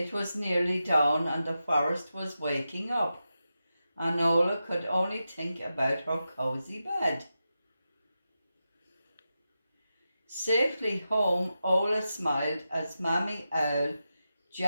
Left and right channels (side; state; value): both; inverted; correlation -0.90